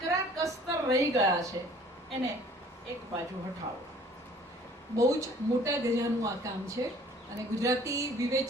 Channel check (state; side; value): normal; both; correlation 0.54